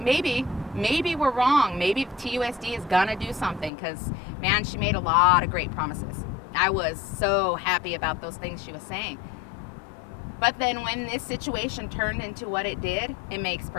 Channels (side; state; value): right; drops out; at 3.7 s